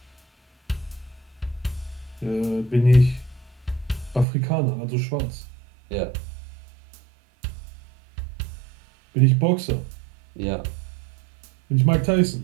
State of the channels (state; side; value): drops out; left; at 4.2 s